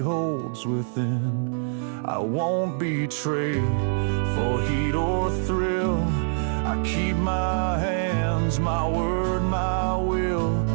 within. I won't betray for heat or thrill. I keep my hands, my word, my will.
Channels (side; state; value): left; silent; digital silence